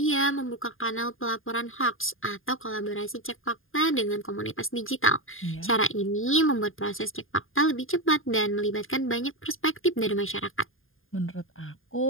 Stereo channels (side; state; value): right; late; 0.59 ms